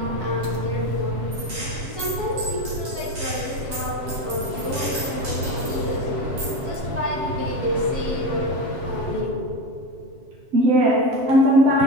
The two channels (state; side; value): late; left; 7.6 ms